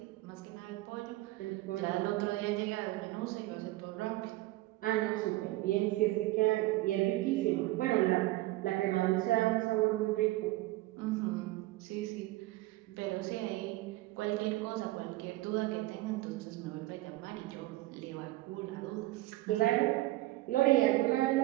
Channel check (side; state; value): left; quieter; 18.2 dB